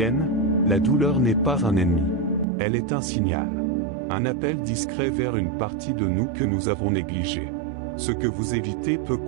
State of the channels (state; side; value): drops out; left; at 2.5 s